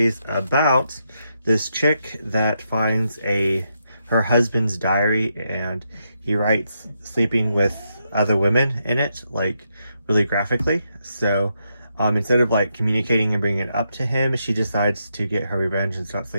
about this chick that finds her husband's diary, and he writes sleeping with other women in it, like really graphically. So instead of like communicating and bringing it up to him, she decides to get her revenge and start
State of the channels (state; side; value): inverted; both; correlation -0.81